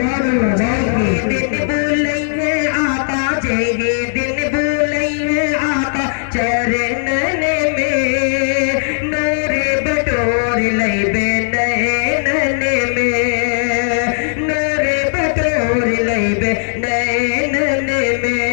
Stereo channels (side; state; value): right; silent; digital silence